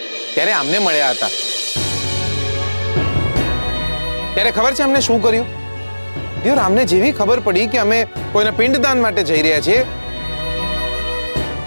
ત્યારે આમને મળ્યા હતા. ત્યારે ખબર છે અમને શું કર્યું? દિયોર, અમને જેવી ખબર પડી કે અમે કોઈના પિંડદાન માટે જઈ રહ્યા છીએ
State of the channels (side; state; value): both; inverted; correlation -1.00